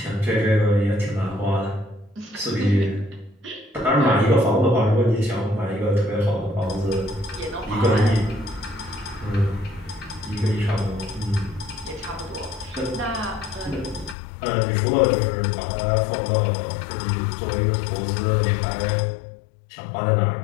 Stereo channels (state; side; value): drops out; right; at 14.2 s